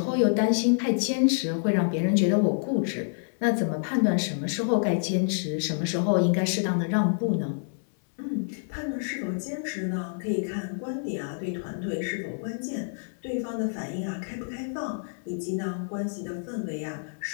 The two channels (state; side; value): silent; right; digital silence